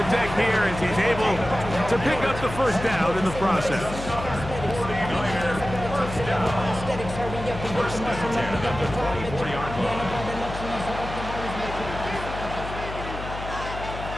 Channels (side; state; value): left; noise; hum, 9 dB below the sound